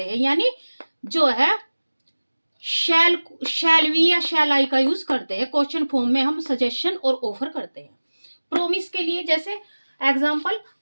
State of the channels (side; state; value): both; inverted; correlation -1.00